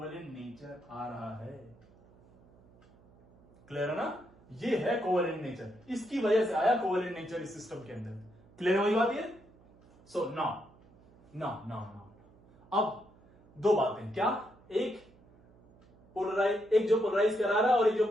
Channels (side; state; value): right; noise; hum, 27 dB below the sound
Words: नेचर आ रहा है। क्लियर है ना? ये है कोवेलेंट नेचर, इसकी वजह से आया कोवेलेंट नेचर इस सिस्टम के अंदर। क्लियर है वही बात ये? सो नाउ अब दो बातें, क्या? एक जो पोलराइज करा रहा है और एक जो